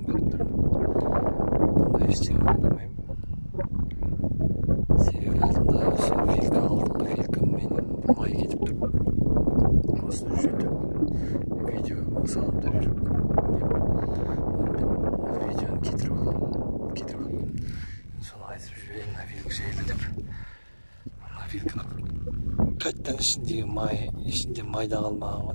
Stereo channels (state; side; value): inverted; both; correlation -1.00